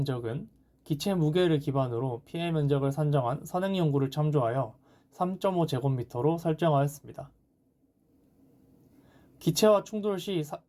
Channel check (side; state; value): both; identical; correlation 1.00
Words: 기체 무게를 기반으로 피해 면적을 산정한 선행 연구를 참조하여 3.5제곱미터로 설정하였습니다. 기체와 충돌 시